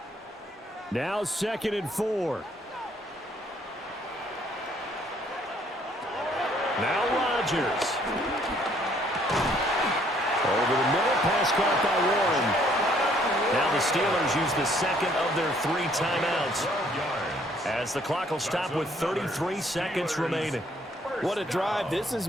Now 2nd and 4. Now Rodgers. Over the middle, pass caught by Warren. Now the Steelers use the 2nd of their 3 timeouts, as the clock will stop with 33 seconds remaining. What a drive this has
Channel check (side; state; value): both; normal; correlation 0.64